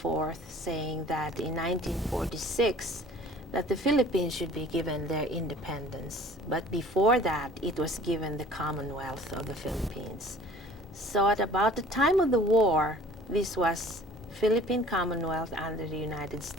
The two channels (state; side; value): normal; both; correlation 0.49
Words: forth saying that in 1946 that the Philippines should be given their independence. But before that, it was given the Commonwealth of the Philippines. So at about the time of the war, this was Philippine Commonwealth under the United